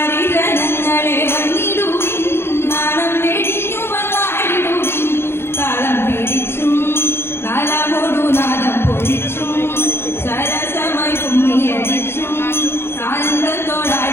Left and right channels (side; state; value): right; late; 0.12 ms